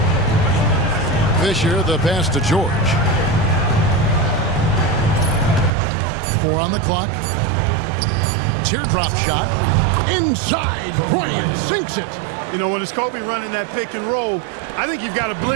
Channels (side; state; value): left; drops out; at 5.7 s